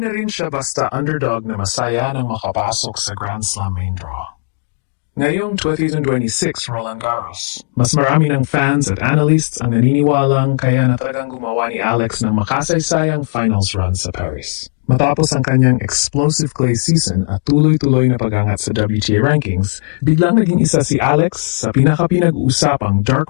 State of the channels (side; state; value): right; silent; digital silence